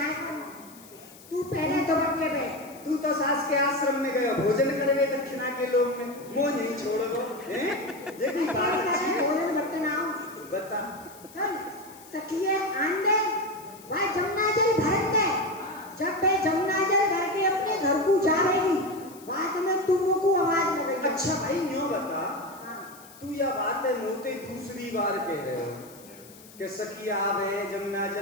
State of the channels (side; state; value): left; noise; hiss, 21 dB below the sound